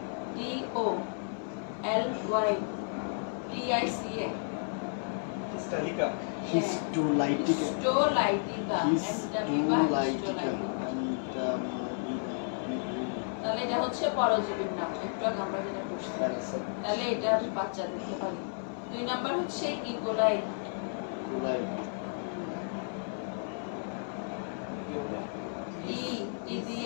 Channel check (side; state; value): right; silent; 56 dB below the other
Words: স্টালিকা Histolaitica. Histolytica Entamoeba Histolaitica. Histolytica. তাহলে এটা হচ্ছে পরজীবীর নাম, একটু আগে আমরা যেটা করছি। তাহলে এটার বাচ্চা দেখতে পারি। 2 নাম্বার হচ্ছে ইকোলাই। ই